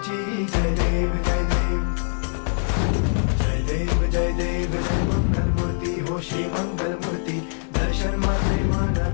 जय देव जय देव जय देव जय देव जय मंगल मूर्ती हो श्री मंगल मूर्ती दर्शन माझे मन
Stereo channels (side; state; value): right; silent; 63 dB below the other